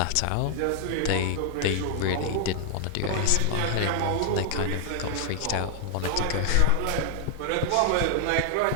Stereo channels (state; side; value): different; both; correlation 0.00